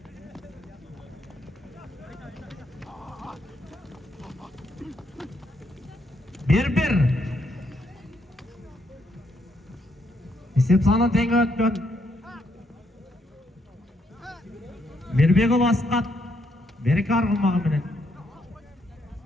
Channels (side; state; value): both; normal; correlation 0.75